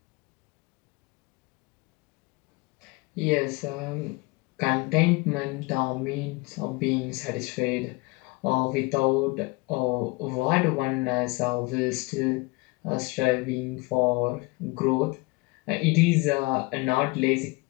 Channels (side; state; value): right; quieter; 25.9 dB